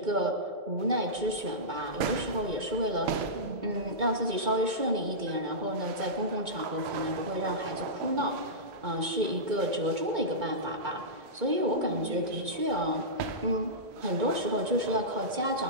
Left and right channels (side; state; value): left; late; 2.2 ms